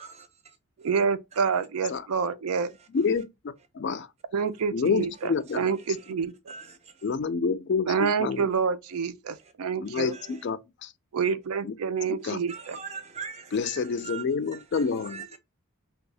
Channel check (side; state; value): both; normal; correlation -0.19